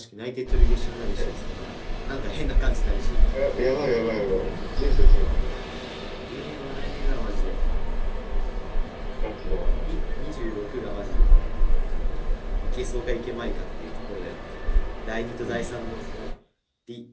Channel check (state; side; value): identical; both; correlation 1.00